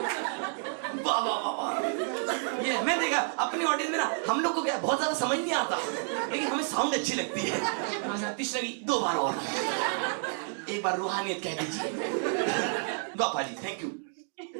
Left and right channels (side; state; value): left; silent; 58 dB below the other